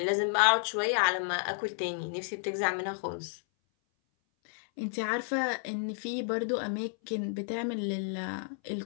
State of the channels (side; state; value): right; silent; 57 dB below the other